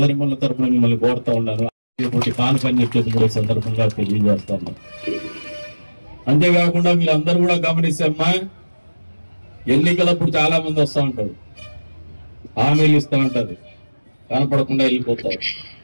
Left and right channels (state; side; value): inverted; both; correlation -1.00